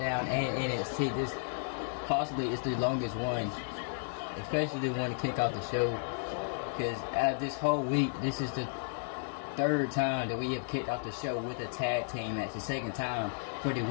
and NXT, this possibly is the longest one. Especially the one to kick off the show. Because out of this whole week, this is the third time that we have kicked off the show with a tag team match. The second time for the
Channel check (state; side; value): silent; right; digital silence